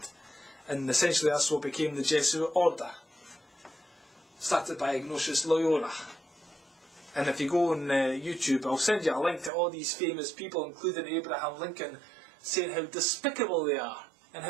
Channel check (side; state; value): left; drops out; at 9.5 s